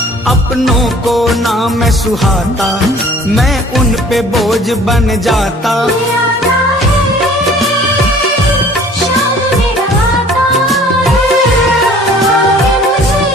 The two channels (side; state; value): both; normal; correlation 0.51